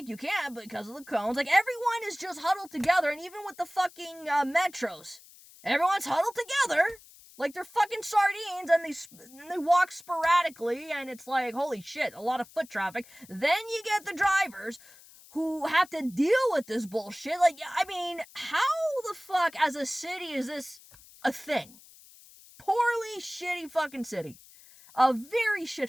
you can't because of the cones. Like, everyone is just huddled together, and even with the fucking metros, everyone's huddled together like they're fucking sardines, and they walk sporadically, and it's like, holy shit, a lot of foot traffic. Then you get the drivers who have to deal with this bullshit. Like, I mean, how the fuck as a city is this a thing? Poorly shitty fucking city. A very shit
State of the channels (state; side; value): noise; left; hiss, 23 dB below the sound